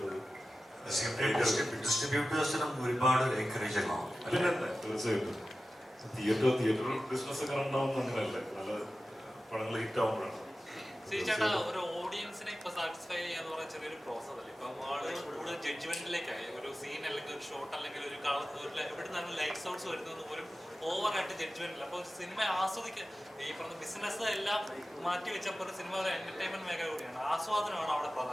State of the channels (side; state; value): both; normal; correlation 0.94